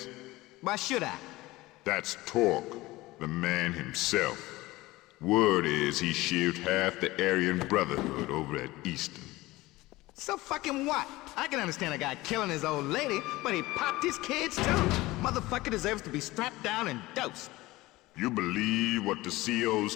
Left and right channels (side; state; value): right; quieter; 19.3 dB